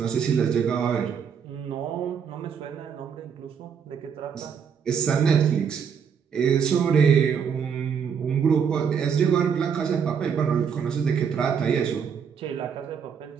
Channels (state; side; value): quieter; left; 7.1 dB